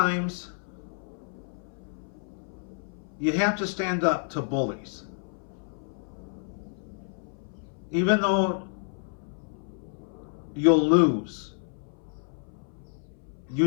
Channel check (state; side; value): silent; right; 58 dB below the other